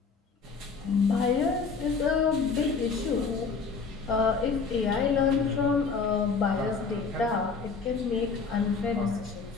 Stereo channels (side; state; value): right; quieter; 5.0 dB